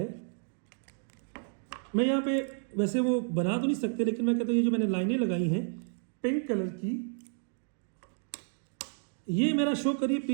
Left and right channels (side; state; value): left; silent; 57 dB below the other